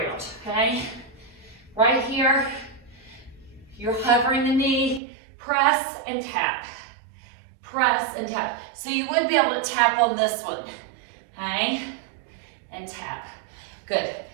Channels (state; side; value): drops out; left; at 5.0 s